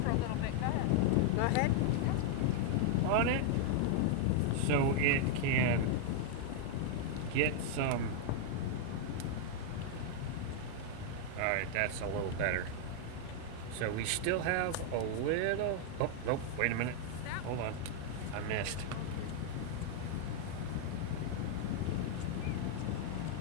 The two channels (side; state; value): both; different; correlation 0.00